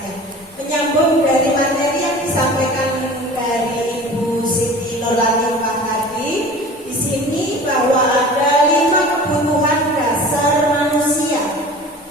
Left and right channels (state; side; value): normal; both; correlation 0.40